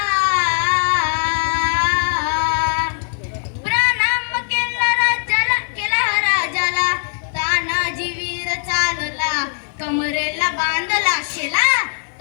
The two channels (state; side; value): silent; right; digital silence